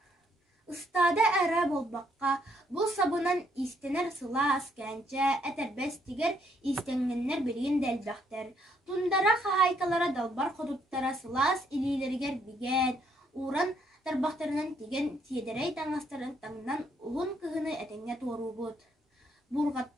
Ыстаада әрі болбаққа, бұл сабынан истенер сылаас кәнчә, әтәрбәс тигер истенгеннер бірген дәлбәқтер. Тундара қағайкалара далбар қодуттара сылаас илилергер биген, уран тарбақтарынан тиген тиедерей таңастарын таңнан ұлын кығыны әтеңе тору бұд.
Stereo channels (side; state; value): both; normal; correlation 0.71